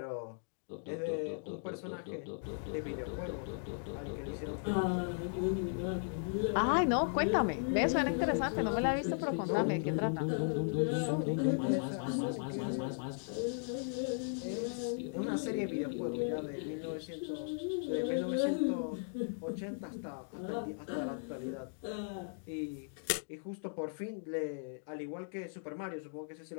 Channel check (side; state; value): right; silent; digital silence